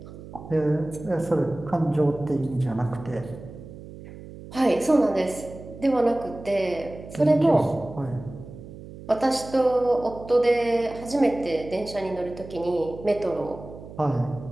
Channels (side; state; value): right; noise; hum, 15 dB below the sound